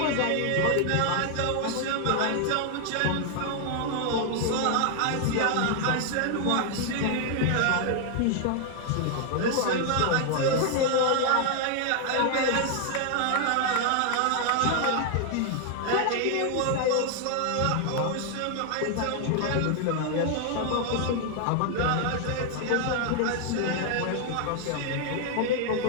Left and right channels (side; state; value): both; different; correlation 0.00